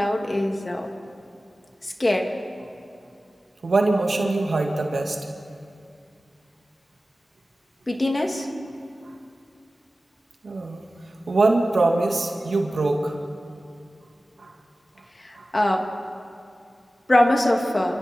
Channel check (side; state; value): both; normal; correlation 0.95